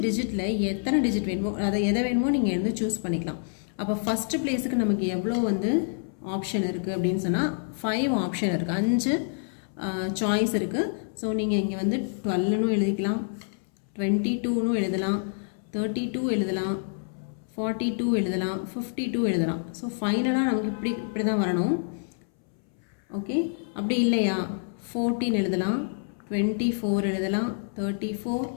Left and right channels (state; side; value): silent; right; 60 dB below the other